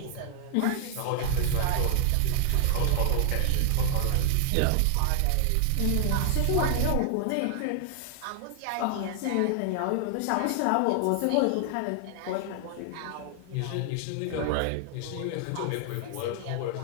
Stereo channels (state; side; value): different; both; correlation 0.00